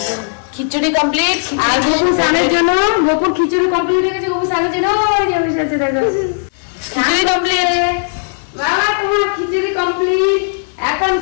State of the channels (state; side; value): silent; right; digital silence